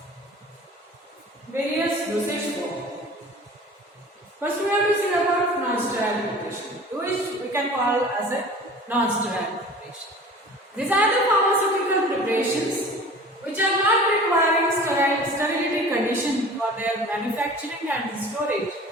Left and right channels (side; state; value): both; normal; correlation 0.42